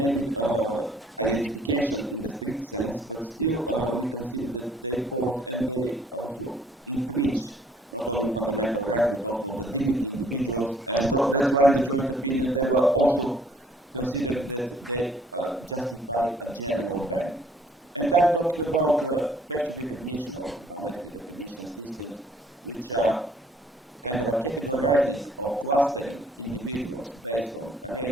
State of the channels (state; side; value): normal; both; correlation 0.59